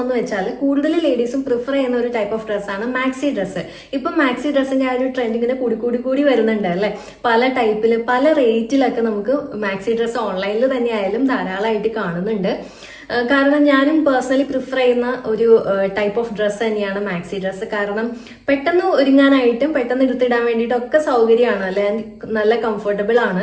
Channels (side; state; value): both; identical; correlation 1.00